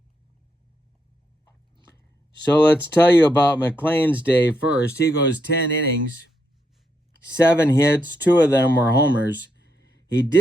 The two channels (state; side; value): normal; both; correlation 0.80